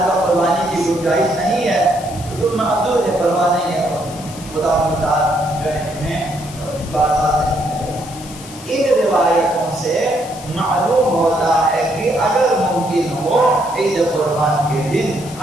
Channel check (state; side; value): noise; left; hiss, 16 dB below the sound